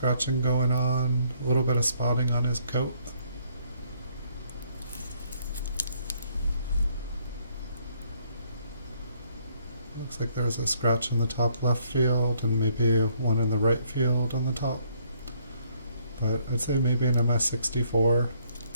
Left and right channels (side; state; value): both; inverted; correlation -0.68